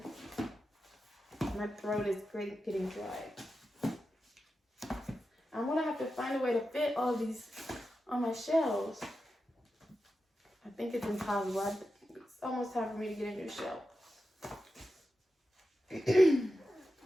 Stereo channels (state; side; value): normal; both; correlation 0.91